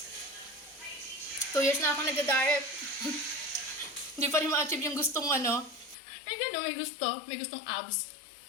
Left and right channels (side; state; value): right; drops out; at 6.0 s